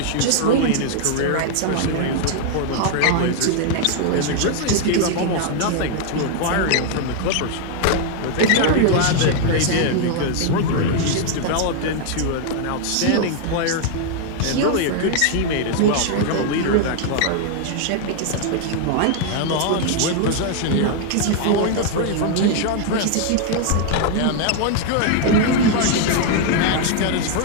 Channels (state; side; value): different; both; correlation 0.00